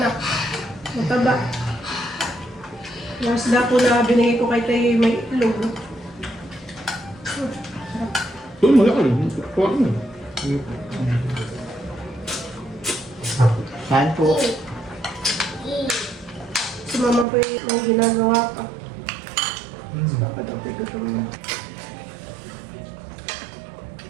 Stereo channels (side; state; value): left; drops out; at 17.2 s